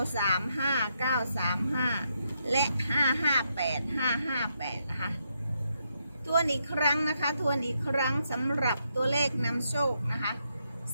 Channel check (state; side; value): inverted; both; correlation -0.79